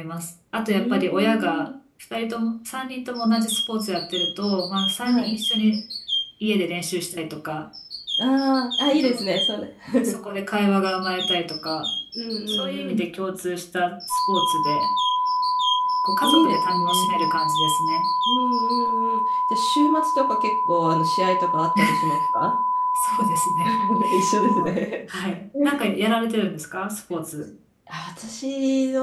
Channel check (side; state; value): both; identical; correlation 1.00